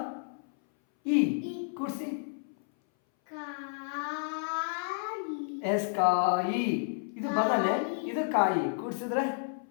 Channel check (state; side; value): silent; right; 57 dB below the other